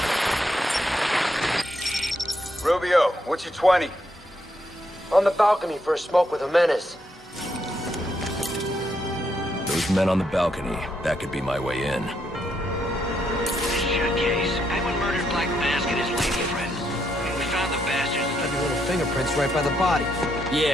Rubio, what's your 20? On the balcony for a smoke with a menace. Those men on the balcony, that could be my way in. Shit case. Penguin murdered Black Mask and his lady friend. We found the bastards. Got little fingerprints right by the body.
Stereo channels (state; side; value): normal; both; correlation 0.78